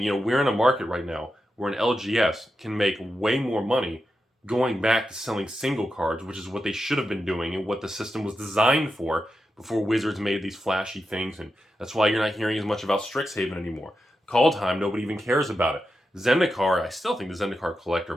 We're in a market right now where an LGS can make way more money going back to selling single cards, which is what they should have been doing and what the system was designed for before Wizards made these flashy things. And that's why you're not hearing as much about StrixHaven anymore. Kaldheim, nobody even cares about it. Zendikar, I still think the Zendikar collector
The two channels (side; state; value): both; normal; correlation 0.88